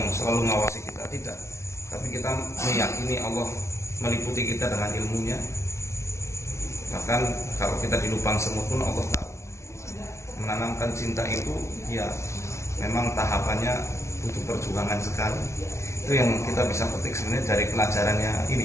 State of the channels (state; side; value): late; right; 0.13 ms